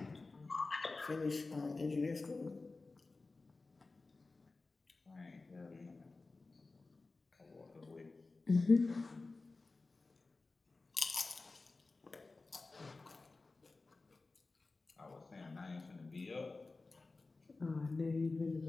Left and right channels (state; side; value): quieter; right; 3.6 dB